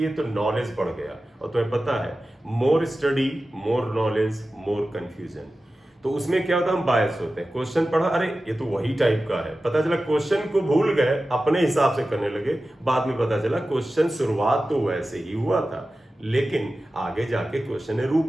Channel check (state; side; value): normal; both; correlation 0.94